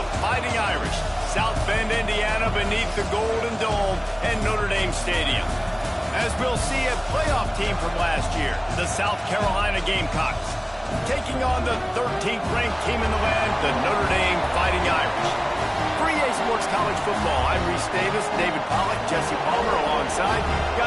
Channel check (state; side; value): identical; both; correlation 1.00